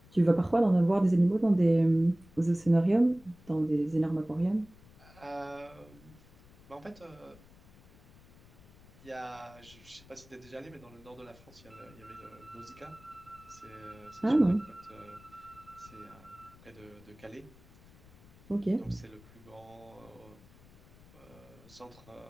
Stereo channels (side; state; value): left; noise; rumble, 24 dB below the sound